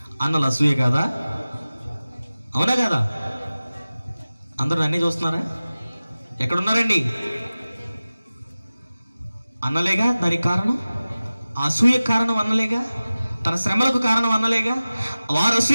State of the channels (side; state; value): both; inverted; correlation -0.97